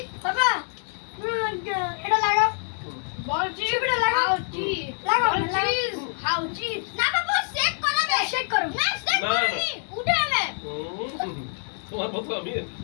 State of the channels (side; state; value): right; silent; 61 dB below the other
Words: বাবা এটা লাগাও বল চিপ এটা লাগাও চিপ লাগাও চিপ খাও চিপ না বাবা শেক করাবে শেক করো না শেক করনি উঠে যাবে তোমার মতো আমি